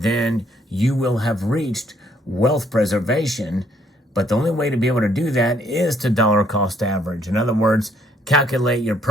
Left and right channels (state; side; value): normal; both; correlation 0.67